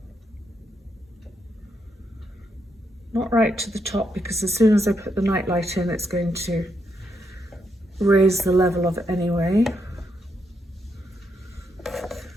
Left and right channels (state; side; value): normal; both; correlation 0.80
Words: Not right to the top, because as soon as I put the nightlight in, it's going to raise the level of it anyway.